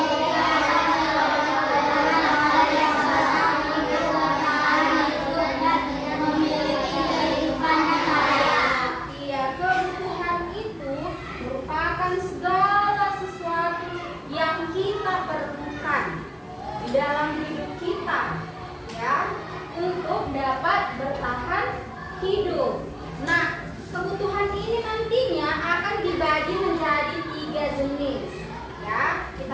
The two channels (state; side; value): identical; both; correlation 1.00